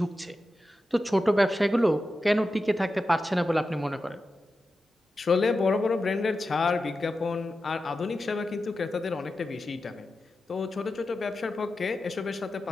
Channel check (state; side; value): normal; both; correlation 0.91